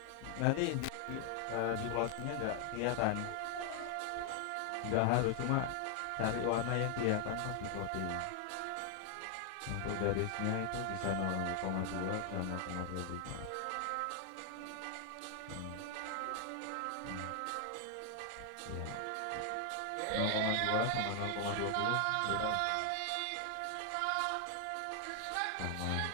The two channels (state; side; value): different; both; correlation 0.00